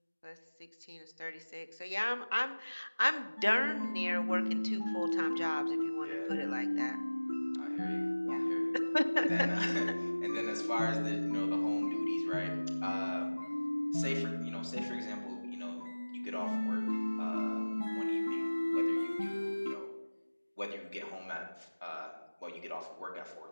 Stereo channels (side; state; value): both; inverted; correlation -1.00